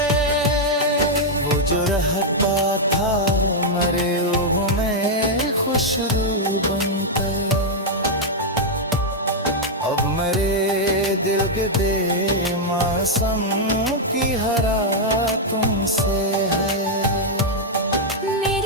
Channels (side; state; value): both; normal; correlation -0.03